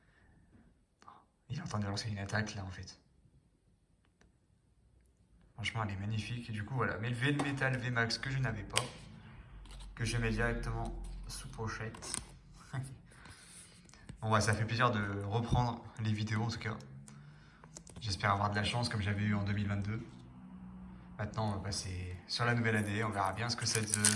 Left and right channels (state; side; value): identical; both; correlation 1.00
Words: Il est en train de lancer une attaque là en fait. Franchement elle est magnifique. Et du coup voilà. Melmetal VMAX que je n'avais pas. Que je mets directement sous pochette. Bon ouais, ça fait plaisir de reprendre les vidéos en tout cas. J'espère avoir de la chance comme j'avais eu en 2022. Maintenant, on va passer sur la nouvelle année. On verra bien ce que ça